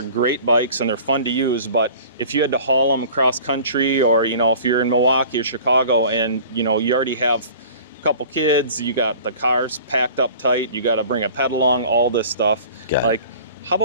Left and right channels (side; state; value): both; inverted; correlation -0.44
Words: great bikes and they're fun to use, but if you had to haul them across country, or, if you're in Milwaukee or Chicago and, you already have a couple kids, you got the cars packed up tight, you got to bring a pedal along, all this stuff. Like, how